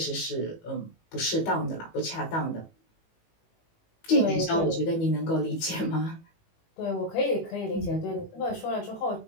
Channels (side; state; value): right; late; 18 ms